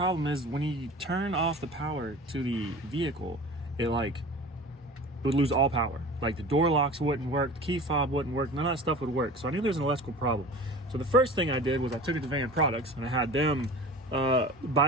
is when you turn off the power to the vehicle, it would lose all power. Like the door locks wouldn't work, the key fob wouldn't work, none of that stuff would work. So I knew there was an electrical problem. So the first thing I did was I took it to Van Products and I had them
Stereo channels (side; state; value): both; normal; correlation 0.38